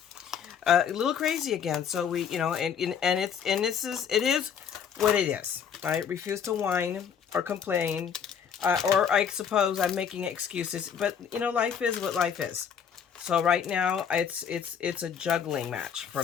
a little crazy again. So we, you know, and it is what it is. I refuse to whine or complain, or I suppose I'm making excuses. But you know, life is what life is. So right now, it's a juggling match for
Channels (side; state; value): right; quieter; 7.6 dB